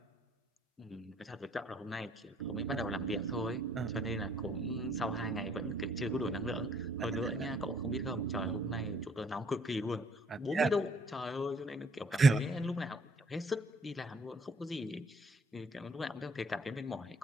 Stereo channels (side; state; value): both; normal; correlation 0.62